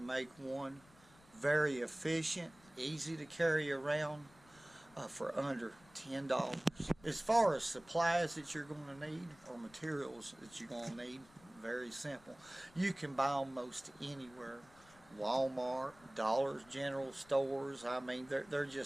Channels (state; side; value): noise; left; rumble, 26 dB below the sound